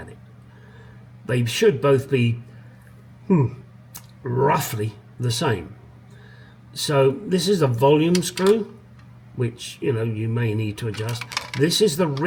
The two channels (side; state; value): both; identical; correlation 1.00